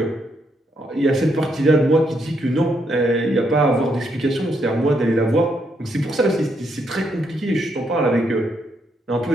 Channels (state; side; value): normal; both; correlation 0.77